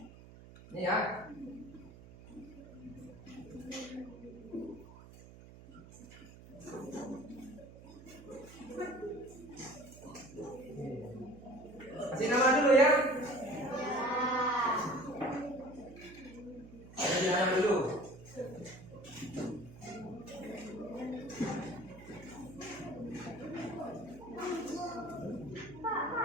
ini ya. Kasih nama dulu ya. Kasih nama dulu.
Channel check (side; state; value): right; noise; hum, 18 dB below the sound